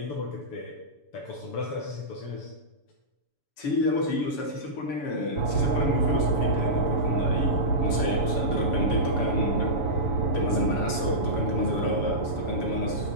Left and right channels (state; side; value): late; right; 7.0 ms